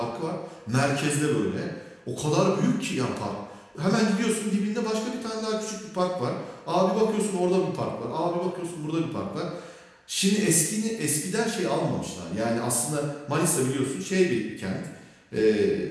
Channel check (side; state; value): both; identical; correlation 1.00